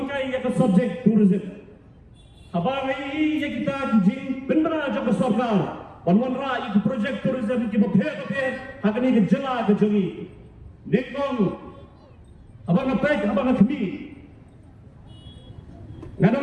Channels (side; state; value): both; identical; correlation 1.00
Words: ya ke subject tourism. Habang ini ya kita jing benda aja ke sarkar. Panwan ra itu projek tourism ki baphe hakni ke jela ke jongi nekong abang apek abang kami